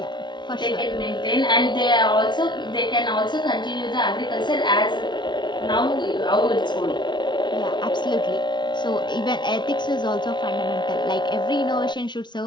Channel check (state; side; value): late; right; 0.22 ms